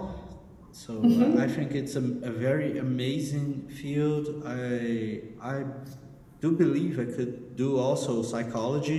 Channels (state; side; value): identical; both; correlation 1.00